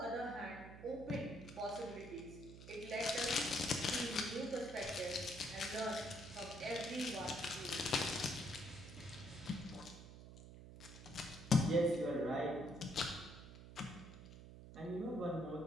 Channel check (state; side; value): noise; right; hum, 14 dB below the sound